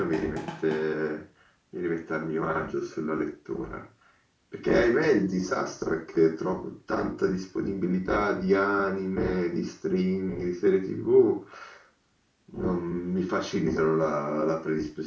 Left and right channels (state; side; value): identical; both; correlation 1.00